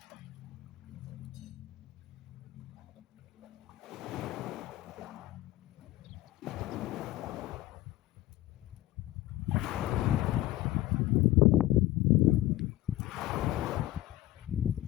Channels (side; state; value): right; quieter; 15.6 dB